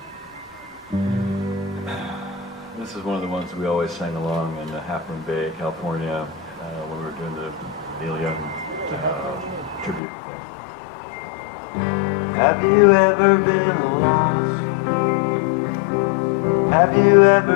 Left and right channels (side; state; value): right; drops out; at 10.0 s